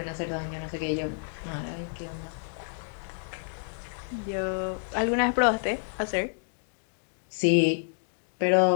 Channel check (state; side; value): silent; right; digital silence